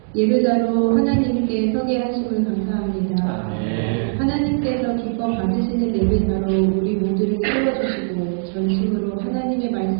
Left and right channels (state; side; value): silent; left; digital silence